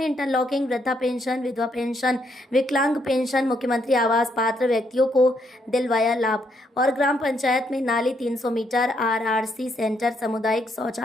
इंटरलॉकिंग, वृद्धा पेंशन, विधवा पेंशन, विकलांग पेंशन, मुख्यमंत्री आवास पात्र व्यक्तियों को दिलवाया लाभ और ग्राम पंचायत में नाली 300 मीटर, RRC सेंटर, सामुदायिक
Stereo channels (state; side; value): normal; both; correlation 0.75